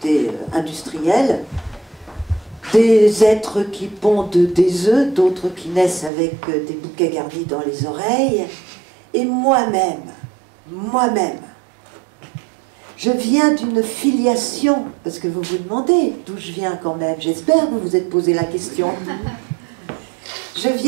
industrielle, des êtres qui pondent des œufs, d'autres qui naissent avec des bouquets garnis dans les oreilles, et moi-même, je viens d'une filiation, parce que vous vous demandez d'où je viens quand même, j'espère que vous vous êtes posé la question. Je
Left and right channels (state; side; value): drops out; left; at 6.1 s